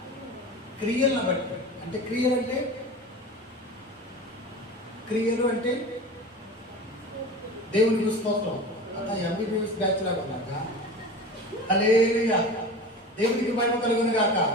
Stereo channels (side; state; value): both; normal; correlation 0.33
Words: క్రియలను బట్టి. అంటే క్రియలు అంటే దేవునికి స్తోత్రం. అంతా ఎంబీబీఎస్ బ్యాచ్ లాగా ఉన్నాక హల్లెలూయా. దేవునికి మహిమ కలుగును గాక.